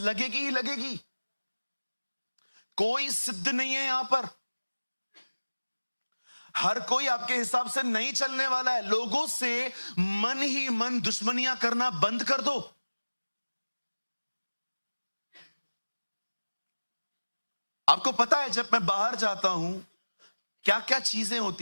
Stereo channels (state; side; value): inverted; both; correlation -1.00